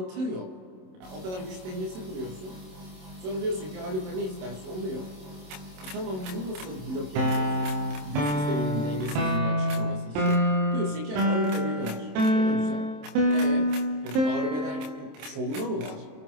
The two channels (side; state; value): left; late; 27 ms